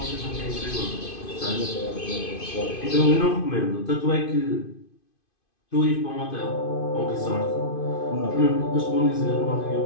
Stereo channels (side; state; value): right; late; 2.5 ms